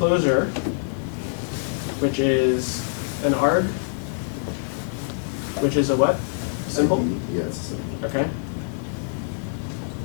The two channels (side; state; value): right; silent; 59 dB below the other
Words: which is an arg, which is a what? Symbol? Yes. Okay.